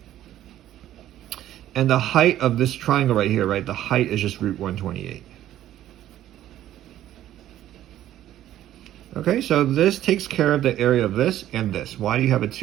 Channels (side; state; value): left; quieter; 12.7 dB